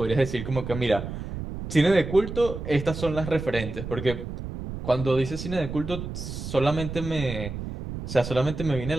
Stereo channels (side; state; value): right; noise; rumble, 7 dB below the sound